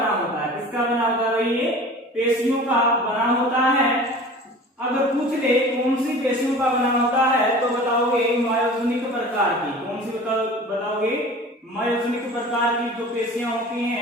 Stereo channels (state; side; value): normal; both; correlation 0.40